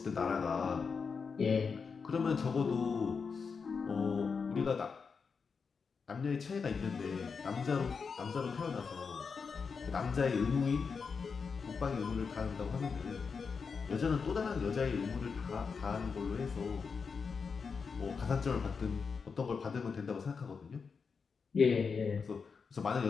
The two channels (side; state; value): right; quieter; 5.4 dB